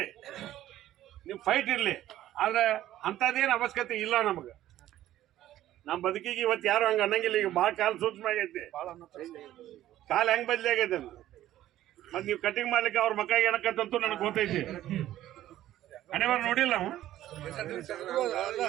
ಇರಲಿ. ಆದ್ರೆ ಅಂಥದ್ದೇನು ಅವಶ್ಯಕತೆ ಇಲ್ಲ ನಮಗೆ. ನಮ್ಮ ಬದುಕಿಗೆ ಇವತ್ತು ಯಾರು ಹಂಗೆ ಅನ್ನಂಗಿಲ್ಲ. ಈಗ ಭಾಳ ಕಾಲ ಸೂಕ್ಷ್ಮ ಆಗೈತಿ, ಕಾಲ ಹೆಂಗೆ ಬದಲಿ ಆಗೈತೆ ಅಂತ. ಮತ್ತೆ ನೀವು ಕಟಿಂಗ್ ಮಾಡ್ಲಿಕ್ಕೆ ಅವ್ರ ಮಕ್ಕಳಿಗೆ ಏನಕ್ಕಂತೂ ನನಗೆ ಗೊತ್ತೈತಿ. ಹಣೆಬಾರ ನೋಡಿಲ್ಲ ನಾವು.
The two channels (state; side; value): quieter; left; 13.5 dB